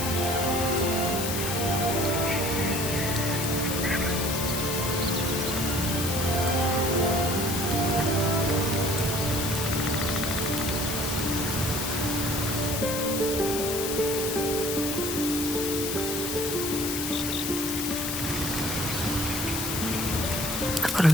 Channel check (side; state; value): left; noise; hiss, 3 dB below the sound